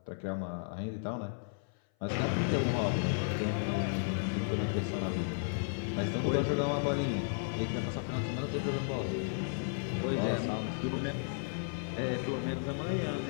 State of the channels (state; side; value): silent; right; 55 dB below the other